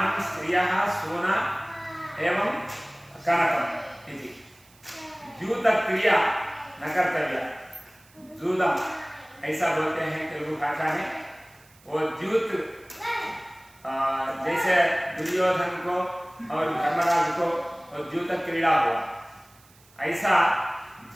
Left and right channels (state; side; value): noise; right; hiss, 28 dB below the sound